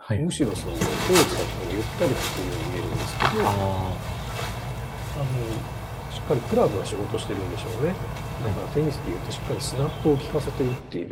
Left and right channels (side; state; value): both; identical; correlation 1.00